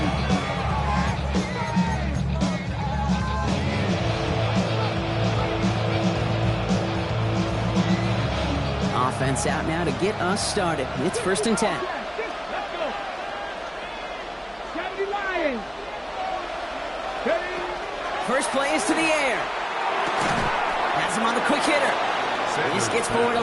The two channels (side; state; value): both; identical; correlation 1.00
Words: Offense out now to get us started. It's 1st and 10. First play is to the air. Has him on the quick hitter. This gets forward a